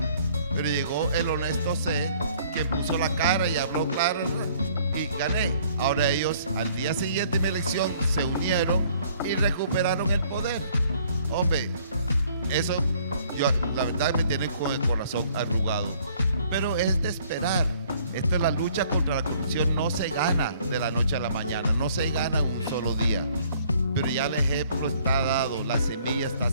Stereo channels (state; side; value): inverted; both; correlation -0.60